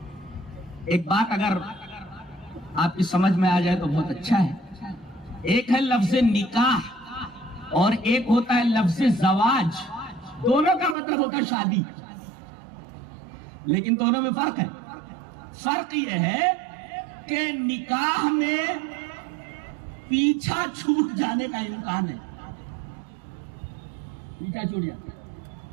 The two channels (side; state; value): left; drops out; at 11.0 s